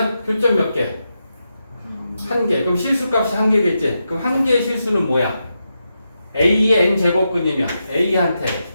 교점 몇 개? 1개. 그럼 실수값이 1개겠지. 그럼 1개의 실수는 뭐야? a의 n제곱근이면 a한테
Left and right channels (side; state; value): both; inverted; correlation -0.87